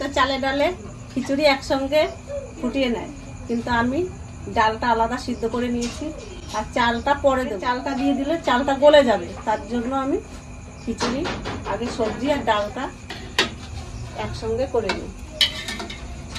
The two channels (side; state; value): both; identical; correlation 1.00